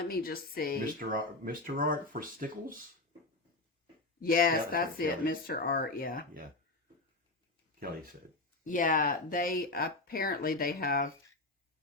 me just see. Mr. Art for Stickles? Yes, that's it. Kelly. Mr. Art, yeah. Yeah. Kelly said. Yeah, they apparently they have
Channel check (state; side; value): quieter; right; 3.0 dB